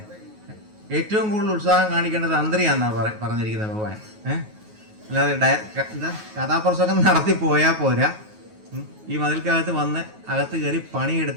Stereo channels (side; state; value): left; late; 9.4 ms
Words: ഏറ്റവും കൂടുതൽ ഉത്സാഹം കാണിക്കേണ്ടത് തന്ത്രിയാന്നാ പറഞ്ഞിരിക്കുന്നത് ഭഗവാൻ. അല്ലാതെ എന്താ കഥാപ്രസംഗം നടത്തി പോയാൽ പോരാ, ഈ മതിൽക്കകത്ത് വന്ന് അകത്ത് കയറി